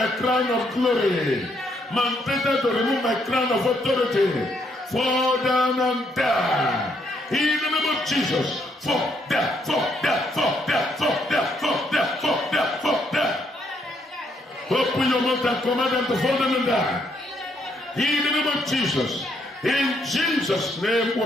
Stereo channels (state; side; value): normal; both; correlation 0.73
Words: crown of glory, mandated to remove my crown of authority, fall down and die. In the name of Jesus, fall down, fall down, fall down, fall down, fall down, fall down, fall down. Open your mouth and command them to fall down and die. In the name of Jesus, in Jesus' name